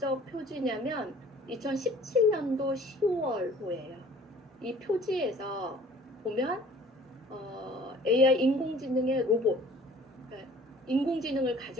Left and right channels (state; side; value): normal; both; correlation 0.51